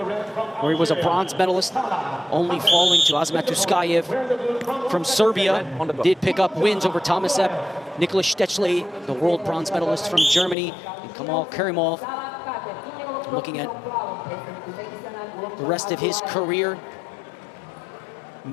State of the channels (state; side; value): drops out; right; at 10.6 s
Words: he was a bronze medalist, only falling to Azamat Tuskayev from Serbia. Did pick up wins over Tomasep, Nicholas Stechley, the world bronze medalist from Germany, and Kamal Karimov. Looking at the rest of his career,